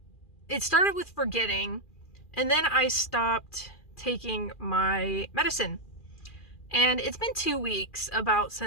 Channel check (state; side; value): late; right; 2.4 ms